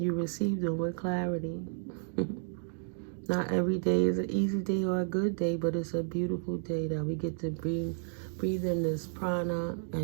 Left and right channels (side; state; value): left; silent; digital silence